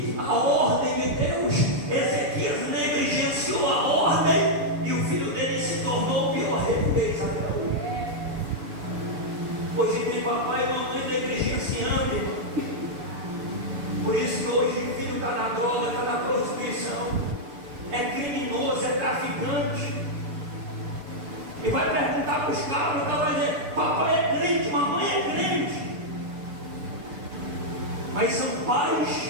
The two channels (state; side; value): late; left; 6.8 ms